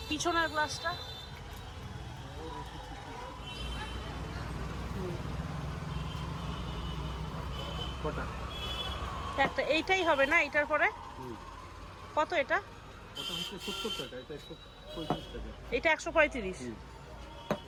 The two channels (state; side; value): identical; both; correlation 1.00